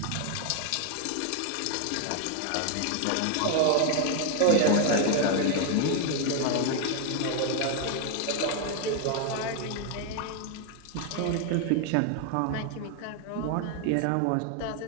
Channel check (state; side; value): different; both; correlation 0.01